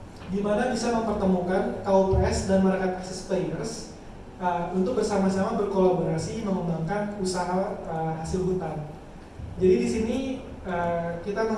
di mana bisa mempertemukan KUPS dan market access players untuk bersama-sama berkolaborasi mengembangkan usaha hasil hutan. Jadi di sini kita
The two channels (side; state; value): both; identical; correlation 1.00